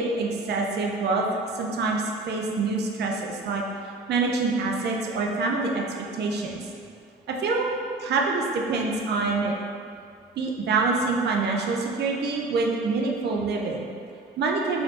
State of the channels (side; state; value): left; quieter; 3.3 dB